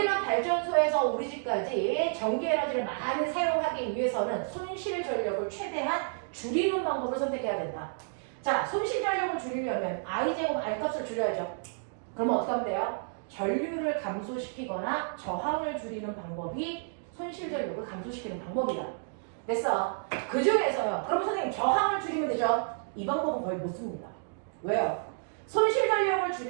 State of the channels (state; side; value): silent; left; digital silence